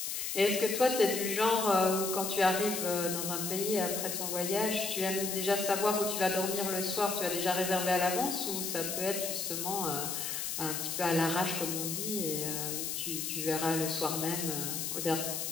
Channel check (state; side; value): noise; left; hiss, 3 dB below the sound